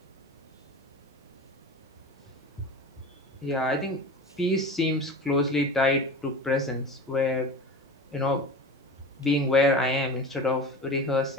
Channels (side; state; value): both; normal; correlation 0.32